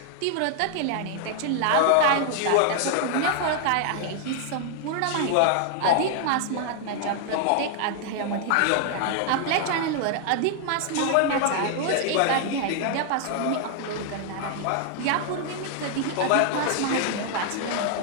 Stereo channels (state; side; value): different; both; correlation 0.00